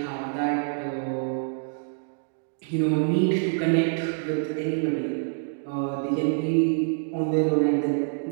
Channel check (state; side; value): silent; left; digital silence